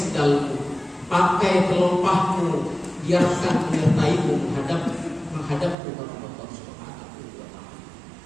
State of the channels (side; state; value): left; drops out; at 5.8 s